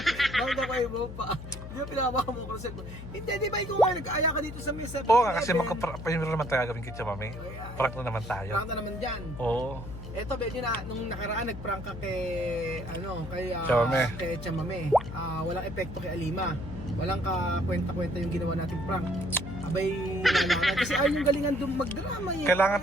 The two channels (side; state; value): left; noise; hum, 10 dB below the sound